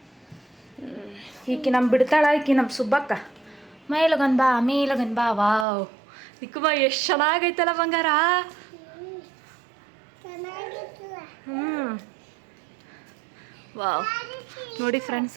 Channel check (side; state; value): left; drops out; at 5.7 s